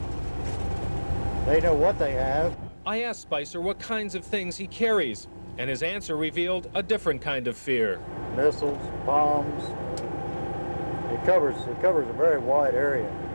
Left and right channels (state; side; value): inverted; both; correlation -1.00